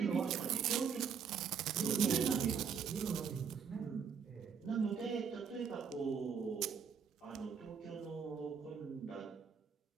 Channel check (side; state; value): left; quieter; 6.7 dB